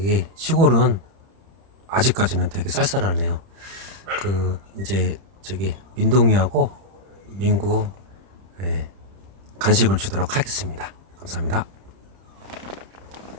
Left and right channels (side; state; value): left; late; 30 ms